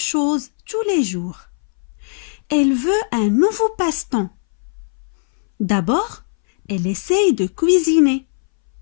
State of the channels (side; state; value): right; silent; 63 dB below the other